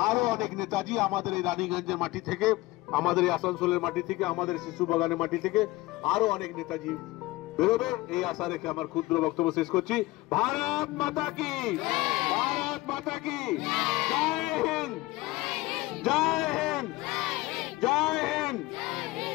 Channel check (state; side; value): quieter; right; 20.0 dB